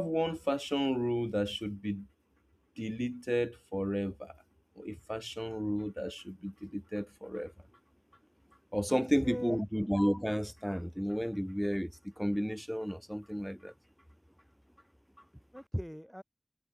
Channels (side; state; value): both; identical; correlation 1.00